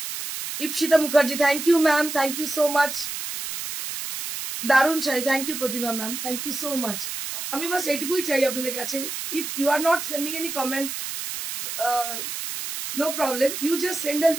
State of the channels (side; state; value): right; noise; hiss, 6 dB below the sound